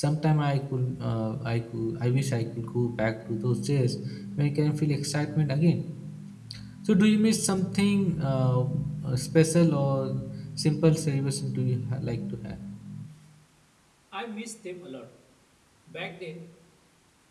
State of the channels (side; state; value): both; identical; correlation 1.00